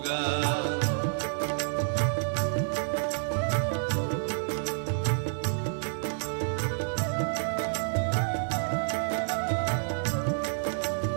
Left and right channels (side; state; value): left; silent; digital silence